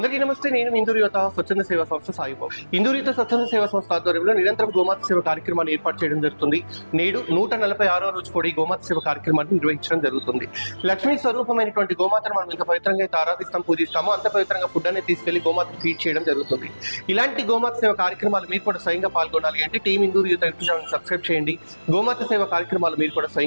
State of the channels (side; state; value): both; inverted; correlation -1.00